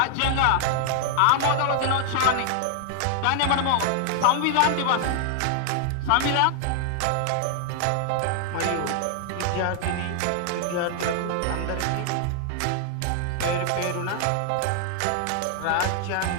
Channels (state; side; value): different; both; correlation 0.00